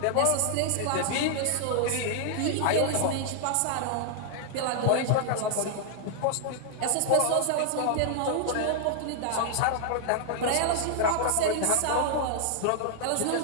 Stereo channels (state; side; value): different; both; correlation 0.00